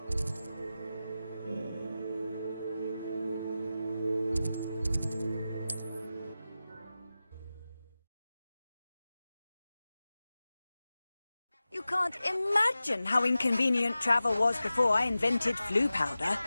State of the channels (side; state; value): both; inverted; correlation -0.95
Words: You can't imagine how inconvenient travel was before I invented flu powder.